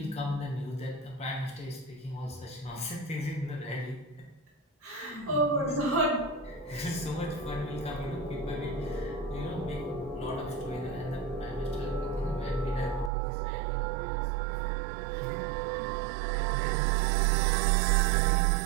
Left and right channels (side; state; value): left; drops out; at 13.1 s